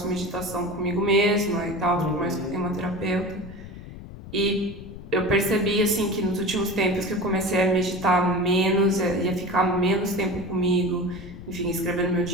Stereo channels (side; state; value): left; noise; rumble, 14 dB below the sound